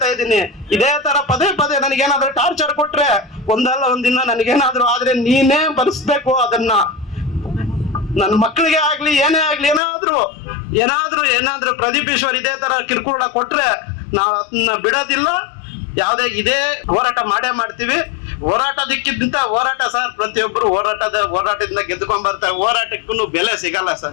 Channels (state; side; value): drops out; right; at 9.8 s